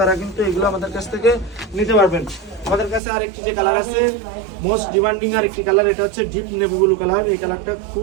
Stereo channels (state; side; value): drops out; left; at 3.0 s